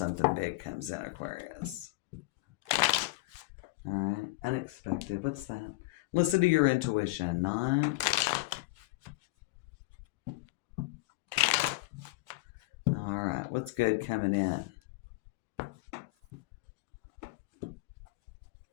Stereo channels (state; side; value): quieter; right; 20.8 dB